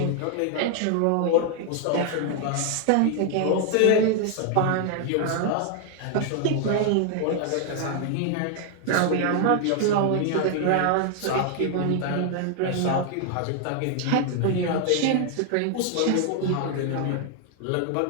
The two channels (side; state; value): both; different; correlation 0.00